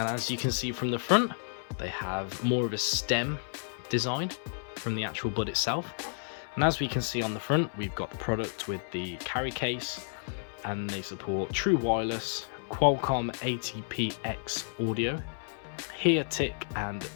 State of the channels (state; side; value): silent; right; 57 dB below the other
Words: as you can see from the front, they have more of a stem design from the actual bud itself. And as we can see on the front, we've got the product with the carry case, and they support true wireless, Qualcomm ATPX audio, Hear Tic and